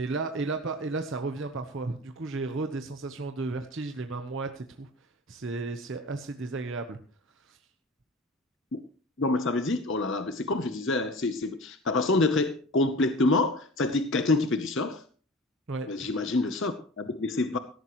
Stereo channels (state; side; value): normal; both; correlation 0.37